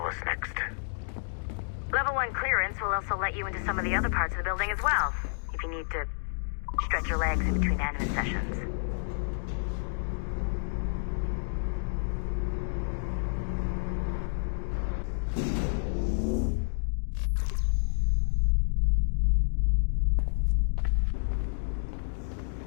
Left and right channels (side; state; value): right; silent; digital silence